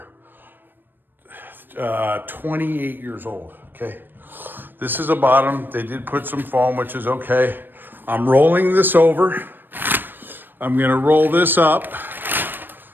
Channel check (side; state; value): left; late; 0.094 ms